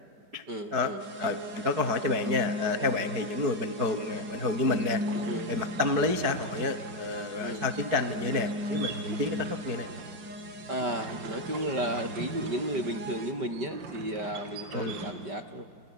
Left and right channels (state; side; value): late; left; 4.7 ms